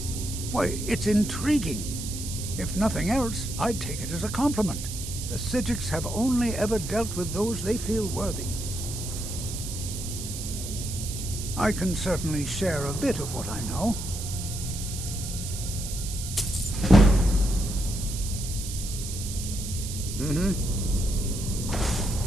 Why, it's intriguing. If nothing else, I'd take it as a compliment. The Psijics have only ever dealt with those they feel worthy. I can certainly share a bit of what I know.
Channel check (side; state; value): right; noise; hiss, 8 dB below the sound